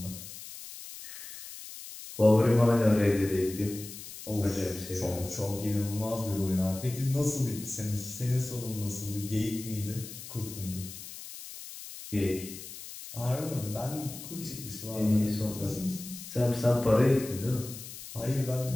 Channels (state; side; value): noise; left; hiss, 12 dB below the sound